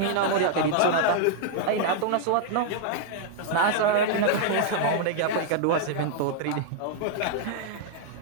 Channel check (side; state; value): both; different; correlation -0.01